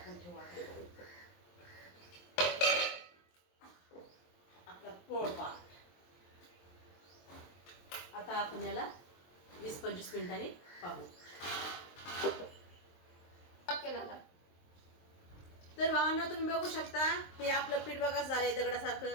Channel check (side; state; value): right; late; 23 ms